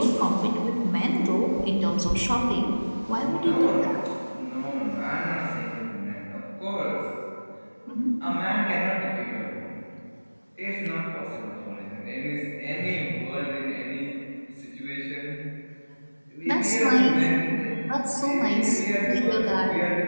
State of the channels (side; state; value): both; inverted; correlation -1.00